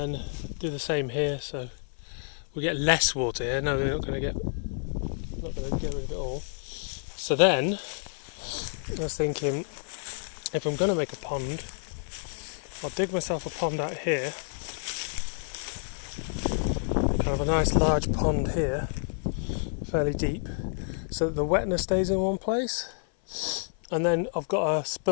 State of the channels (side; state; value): right; silent; 55 dB below the other